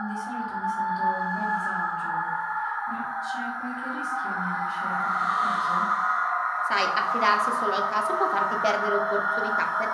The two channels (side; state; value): both; identical; correlation 1.00